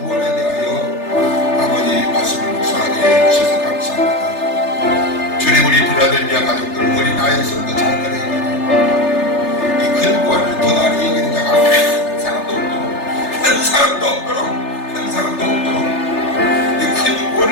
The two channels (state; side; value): late; right; 3.3 ms